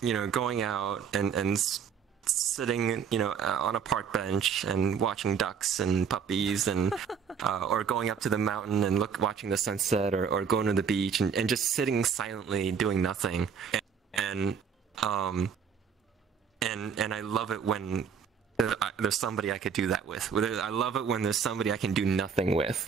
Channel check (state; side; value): quieter; left; 6.9 dB